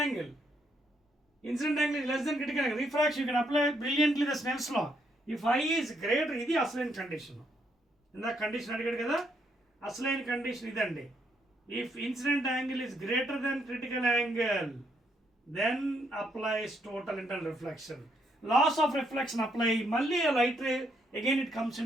angle. Incident angle is less than critical angle. Refraction, you can apply brilliantly the Snell's law. If I is greater, ఇది అసలైన కండిషన్. ఇందాక కండిషన్ అడిగాడు కదా, అసలైన కండిషన్ ఇదండి. If incident angle is greater than critical angle, then applies total internal reflection. Loss of reflection apply, మళ్ళీ a light ray, again it comes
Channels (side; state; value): both; normal; correlation 0.74